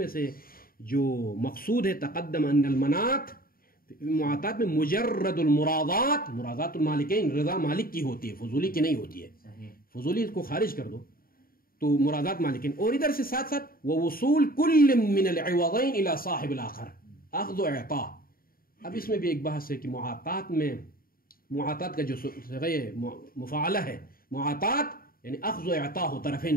سے جو مقصود ہے تقدم ان المناط، معاطات میں مجرد المرادات، مرادات المالکین، رضا مالک کی ہوتی ہے، فضولی کی نہیں ہوتی ہے. فضولی کو خارج کر دو تو مرادات مالکین. اور ادھر سے ساتھ ساتھ ووصول کل من العوضین الى صاحب الاخر، اخذ و اعطاء. اب اس میں بھی ایک بحث ہے کہ معاطات میں، معاطات کا جو صيغہ مفاعلہ ہے، معاطات یعنی اخذ و اعطاء ہو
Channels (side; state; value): right; late; 0.42 ms